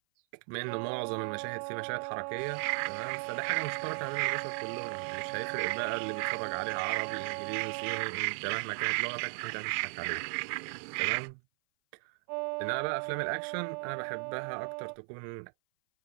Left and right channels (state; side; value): silent; left; 54 dB below the other